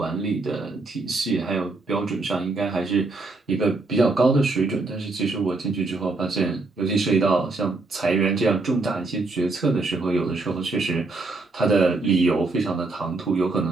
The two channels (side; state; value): left; quieter; 3.4 dB